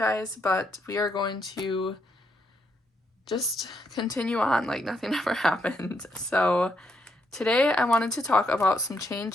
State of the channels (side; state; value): both; normal; correlation 0.77